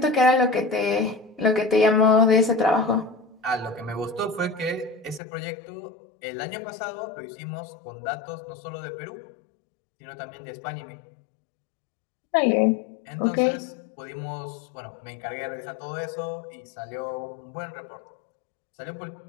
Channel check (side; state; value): right; drops out; at 5.2 s